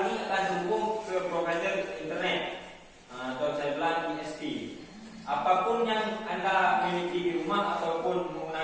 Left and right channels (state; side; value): identical; both; correlation 1.00